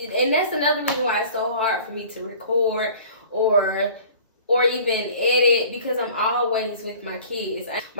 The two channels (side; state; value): both; inverted; correlation -0.47